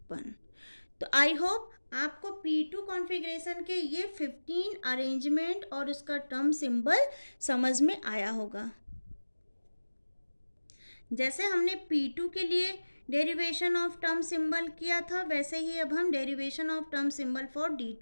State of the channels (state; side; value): inverted; both; correlation -1.00